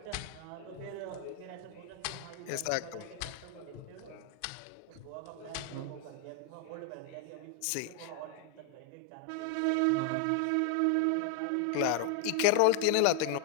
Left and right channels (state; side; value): different; both; correlation 0.00